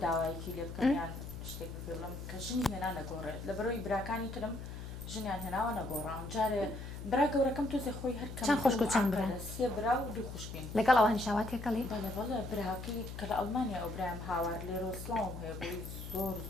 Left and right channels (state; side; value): noise; left; hum, 9 dB below the sound